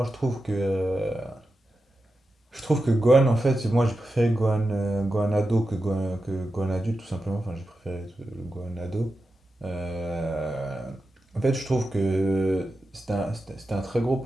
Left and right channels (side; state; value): both; normal; correlation 0.91